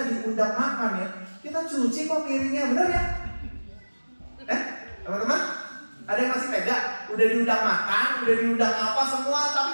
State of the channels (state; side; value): inverted; both; correlation -1.00